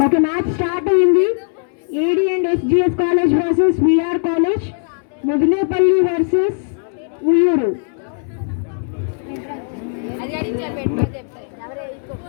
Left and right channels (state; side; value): silent; right; 64 dB below the other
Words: ఓకే, మ్యాచ్ స్టార్ట్ అయింది. AD and SGS college versus VR college, Mudinepalli versus Uyyuru.